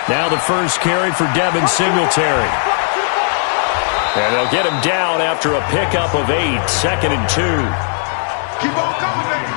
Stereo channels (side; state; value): right; silent; digital silence